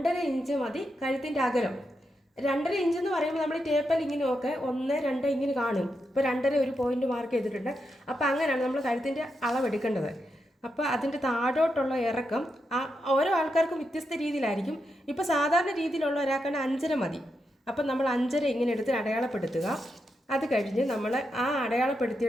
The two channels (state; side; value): normal; both; correlation 0.85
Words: ഇഞ്ച് മതി കഴുത്തിൻ്റെ അകലം. 2.5 ഇഞ്ച് എന്ന് പറയുമ്പോൾ നമ്മൾ ടേപ്പൽ ഇങ്ങനെ ഒക്കെ 1, 2 ഇങ്ങനെ കാണും. ഇപ്പോൾ 2.5 ഒരു പോയിന്റ് മാർക്ക് ചെയ്തിട്ടുണ്ട്. അപ്പോൾ അങ്ങനെയാണ് നമ്മൾ കഴുത്തിൻ്റെ അളവെടുക്കേണ്ടത്. അപ്പോൾ അതിൻ്റെ താഴോട്ടുള്ള ഇറക്കം ഓരോ ആൾക്കാർക്കും വ്യത്യസ്ത രീതിയിലായിരിക്കും. ഇപ്പോൾ സാധാരണ രീതിയിലുള്ള ഒരാൾക്കാണ് 5.5 മതി. അപ്പം നമ്മൾ 5.5 ഇങ്ങനെ എടുത്ത് അടയാളപ്പെടുത്തുക. അത് കഴിഞ്ഞ് നമ്മൾ ആ